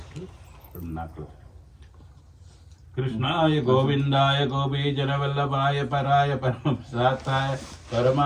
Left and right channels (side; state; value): both; identical; correlation 1.00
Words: நாக்கில். கிருஷ்ணாய கோவிந்தாய கோபீஜனவல்லபாய பராய பரமசாத்தாய